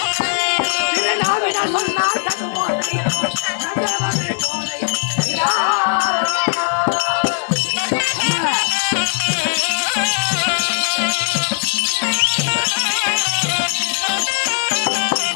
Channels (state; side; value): silent; right; digital silence